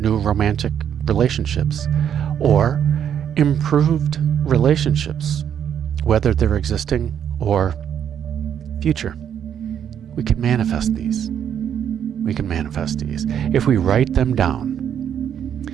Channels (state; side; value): quieter; left; 8.9 dB